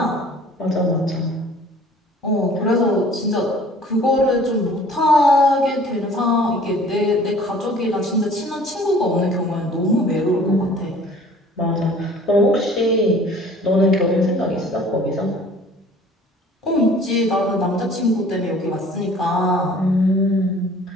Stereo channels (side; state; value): both; normal; correlation 0.50